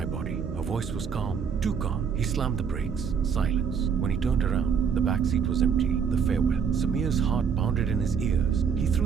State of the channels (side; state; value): left; quieter; 6.7 dB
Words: body." Her voice was calm, too calm. He slammed the brakes. Silence. When he turned around, the back seat was empty. The farewell. Samir's heart pounded in his ears. He